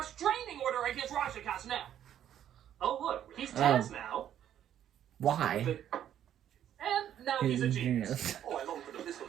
order against Rajaka's now. Oh, look, he's Taz now. Why? And now he's a genius. Oh, I long for the pistol.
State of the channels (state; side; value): quieter; left; 10.5 dB